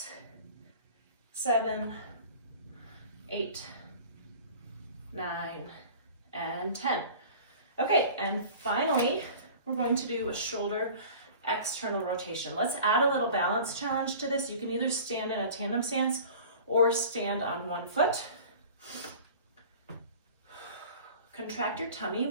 7, 8, 9, and 10. Okay, and finally, we're going to do a shoulder external rotation. Let's add a little balance challenge to this. You can either stand in a tandem stance or stand on one foot. Contract your tummy.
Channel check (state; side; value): inverted; both; correlation -0.42